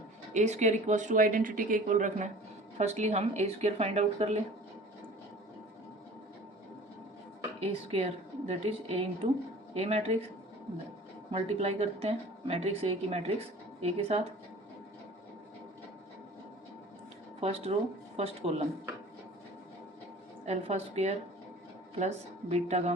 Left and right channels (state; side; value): normal; both; correlation 0.44